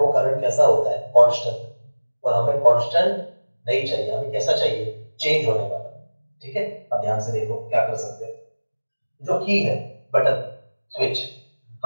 वो करंट कैसा होता है, कांस्टेंट। और हमें कांस्टेंट नहीं चाहिए, हमें कैसा चाहिए, चेंज होने वाला। ठीक है, अब ध्यान से देखो क्या कर सकते हैं। जो की है, बटन, स्विच,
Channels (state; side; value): inverted; both; correlation -1.00